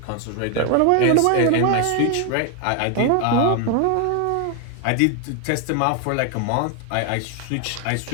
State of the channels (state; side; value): different; both; correlation 0.01